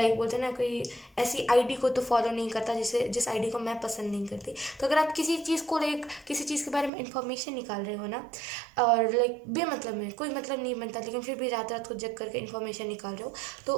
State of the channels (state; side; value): drops out; left; at 6.9 s